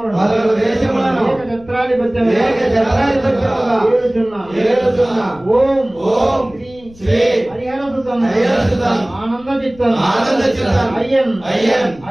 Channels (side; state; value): left; noise; rumble, 24 dB below the sound